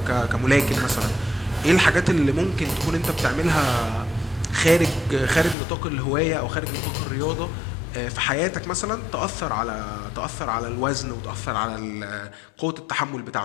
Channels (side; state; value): right; drops out; at 5.6 s